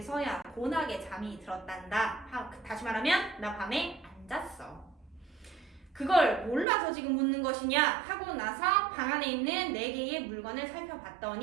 곤하게 잠이 들었단다. 다시 말하면 나 밤에 안 잤어. 그걸 몰라서 지금 묻는 것이냐 하고 나서 방 안에 있는 4개의 물건을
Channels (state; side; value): drops out; left; at 6.7 s